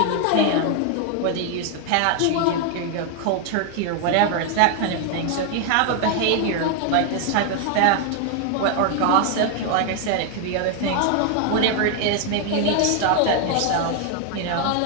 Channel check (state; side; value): different; both; correlation 0.00